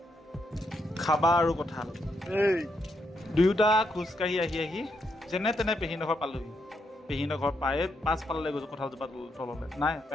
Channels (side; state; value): both; normal; correlation 0.79